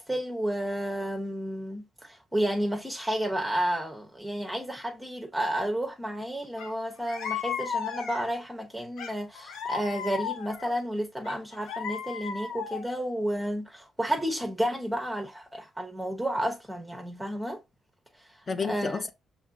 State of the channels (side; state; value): both; normal; correlation 0.88